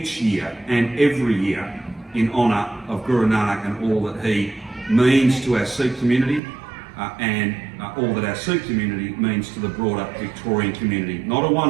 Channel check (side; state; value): left; drops out; at 6.4 s